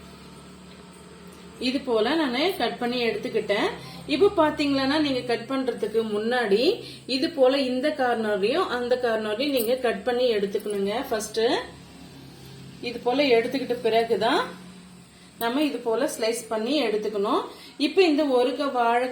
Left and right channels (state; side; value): identical; both; correlation 1.00